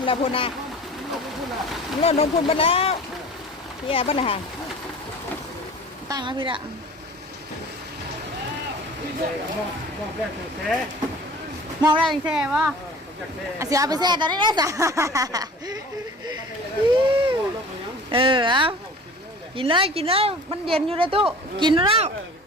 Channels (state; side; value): normal; both; correlation 0.43